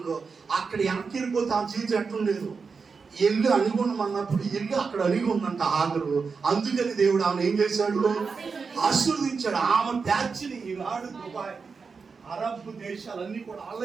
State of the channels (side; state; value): left; quieter; 5.1 dB